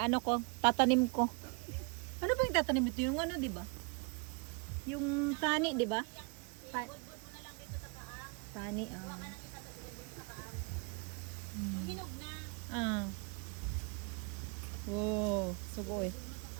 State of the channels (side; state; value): left; quieter; 33.8 dB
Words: ko, tatanim ko. Ano ba yung tatanim ito? Yung ano, di ba? Yung tani, di ba? Tani, Hinog na. Wow, sugo eh.